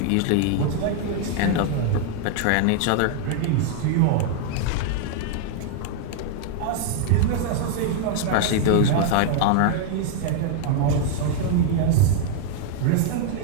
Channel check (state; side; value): different; both; correlation 0.00